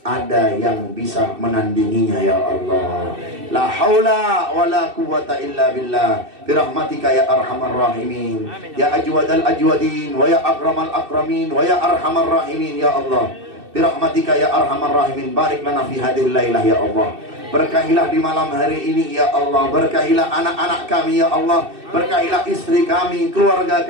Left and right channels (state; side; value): late; left; 2.6 ms